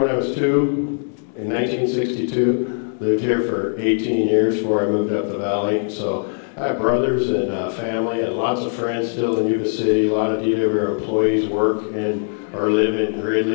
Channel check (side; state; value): right; silent; 65 dB below the other